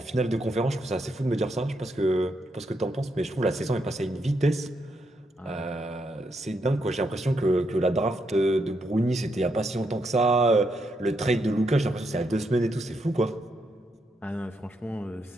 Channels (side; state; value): both; normal; correlation 0.79